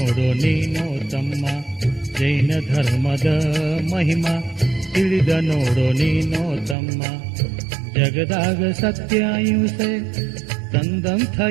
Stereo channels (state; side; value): drops out; left; at 6.8 s